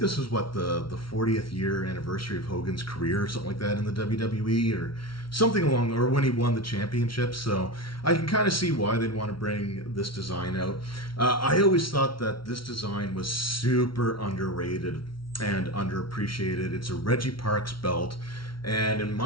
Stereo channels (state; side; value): late; right; 0.74 ms